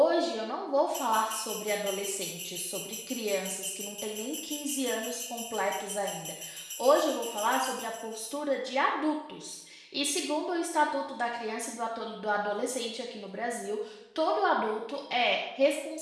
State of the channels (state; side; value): identical; both; correlation 1.00